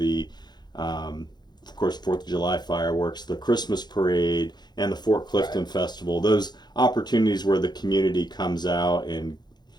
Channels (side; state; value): right; late; 0.21 ms